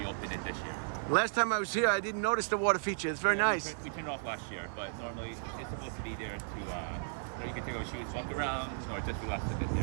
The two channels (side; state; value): left; silent; 55 dB below the other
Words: it this year. Last time I was here, I didn't notice the water feature. It's very nice. We turned it off last year, but normally it's supposed to be there to, you can take out shoes, walk around, or just relax a bit